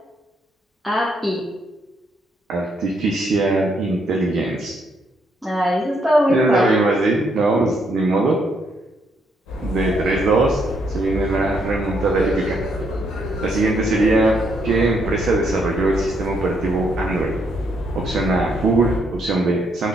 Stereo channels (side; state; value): both; normal; correlation 0.74